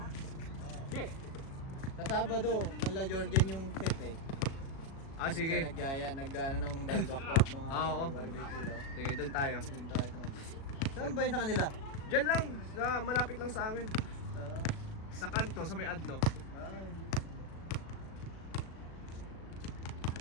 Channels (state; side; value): late; right; 37 ms